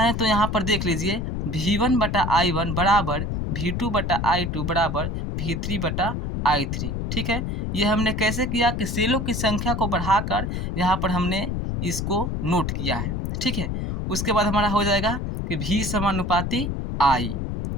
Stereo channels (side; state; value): left; noise; rumble, 2 dB below the sound